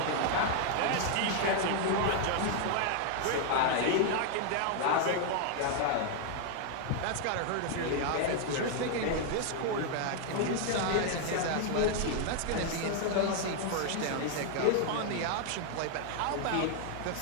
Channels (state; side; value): different; both; correlation 0.00